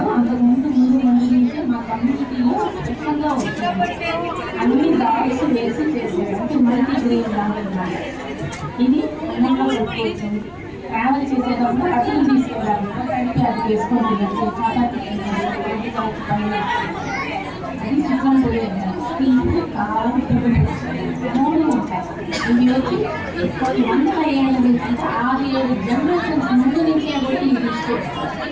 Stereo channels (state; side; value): identical; both; correlation 1.00